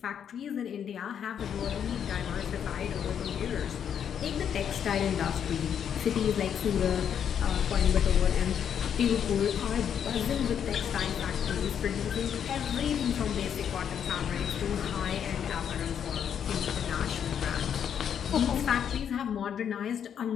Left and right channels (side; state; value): right; quieter; 8.5 dB